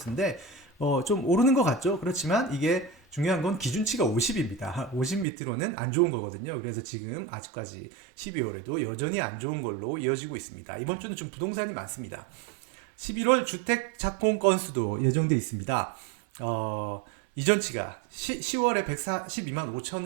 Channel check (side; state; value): left; drops out; at 5.2 s